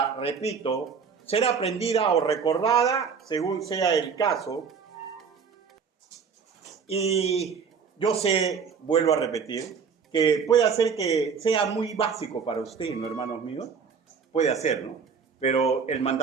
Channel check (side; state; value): left; quieter; 6.1 dB